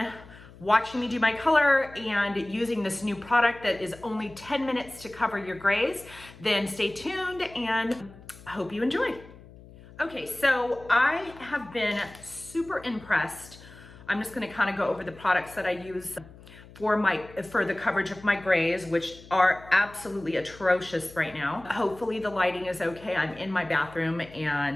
watching me do my color and using this new product that is only 10 minutes to cover your grays, then stay tuned and I hope you enjoy. Okay, so I have been super impressed. I'm just gonna kind of go over the products that I use for the coverage of my grays, which are absolutely atrocious right now. Hopefully the lighting is okay. I'm in my bathroom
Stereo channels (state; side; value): noise; left; hum, 20 dB below the sound